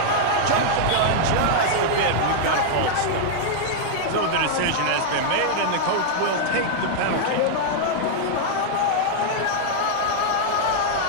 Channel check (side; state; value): both; different; correlation -0.01